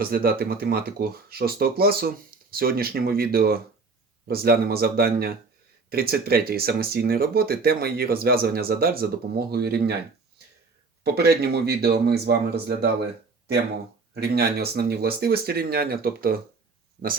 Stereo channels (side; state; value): left; quieter; 4.2 dB